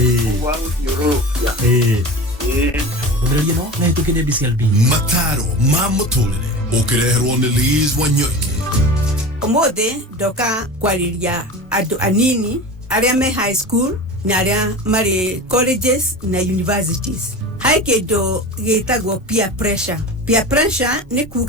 wa guthiururukia Ndio no na tukide BCLB mataro ma muturire ukireherwo ni Liz Wanyoike. Umuthi ndoka kwariria andu anini aria me high school na aria mari colleges na universities. Hai kindu gitagwo peer pressure. Peer pressure ni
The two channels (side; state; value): both; normal; correlation 0.32